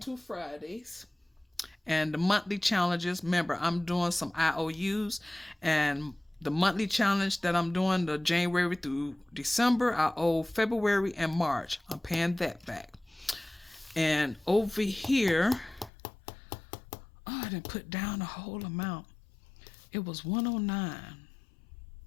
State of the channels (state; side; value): drops out; right; at 15.9 s